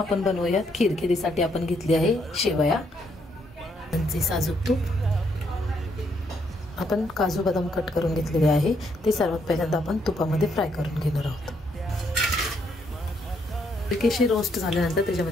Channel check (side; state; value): both; normal; correlation 0.74